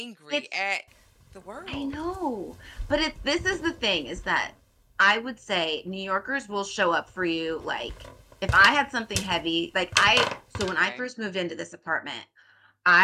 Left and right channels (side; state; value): both; identical; correlation 1.00